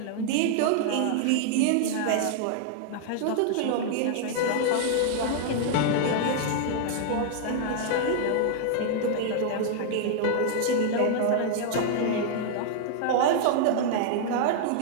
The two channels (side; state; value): both; different; correlation -0.01